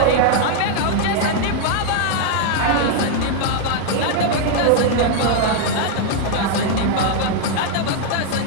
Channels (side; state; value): both; different; correlation 0.00